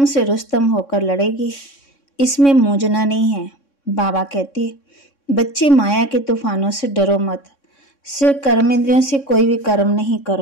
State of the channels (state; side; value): late; right; 3.6 ms